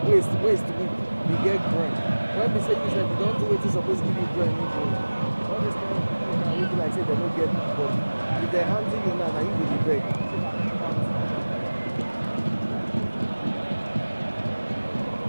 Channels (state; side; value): inverted; both; correlation -1.00